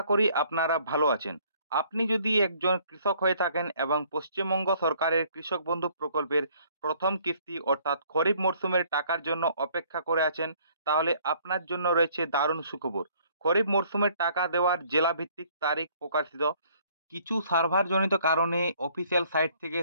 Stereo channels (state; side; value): inverted; both; correlation -0.60